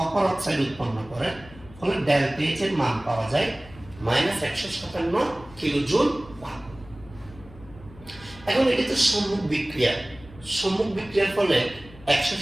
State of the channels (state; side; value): noise; left; hum, 20 dB below the sound